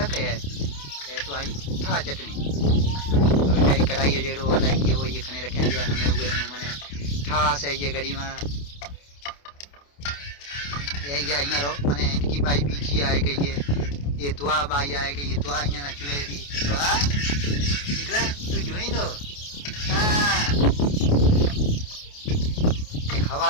है तो आई ठा चटनी तो बेचारी कढ़ाई जेड़ो अलग ये वो ये खने रखे हमें हुए मैंने ठास है ये घड़ी में ये अँ रो मैंने इनकी बाई बीजी आए गई है। ये दुआ बाई आए गई ये दुआ अँ ना चुए दी दुआ निकला तू जुई दो। ये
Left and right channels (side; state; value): right; late; 28 ms